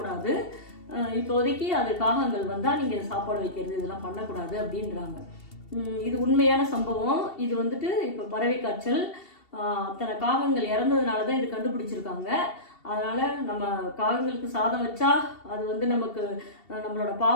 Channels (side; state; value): right; late; 2.7 ms